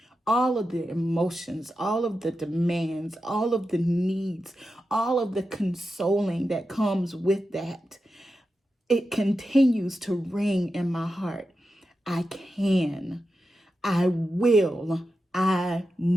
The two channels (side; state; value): both; normal; correlation 0.90